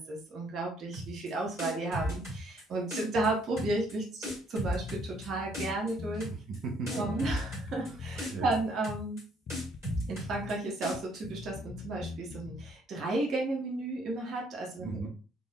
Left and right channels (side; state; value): both; normal; correlation 0.66